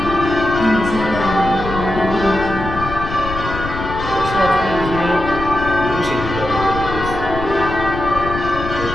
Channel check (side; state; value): left; noise; rumble, 8 dB below the sound